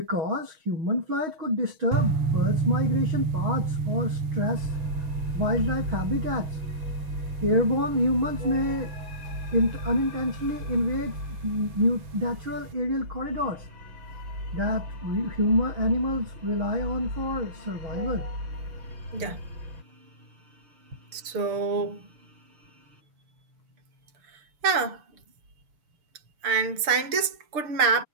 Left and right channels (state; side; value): late; left; 6.7 ms